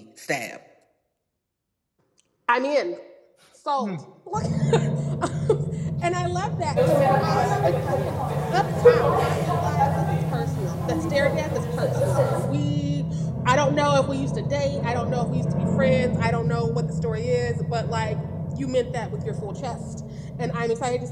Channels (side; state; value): both; identical; correlation 1.00